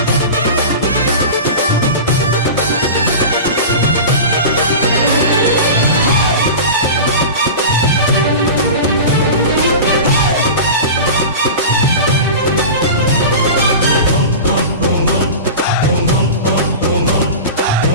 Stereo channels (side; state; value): both; inverted; correlation -0.30